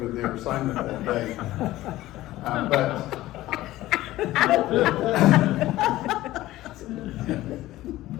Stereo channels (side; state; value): right; quieter; 16.2 dB